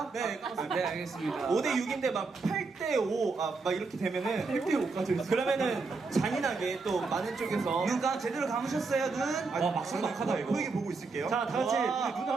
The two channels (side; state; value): left; quieter; 4.2 dB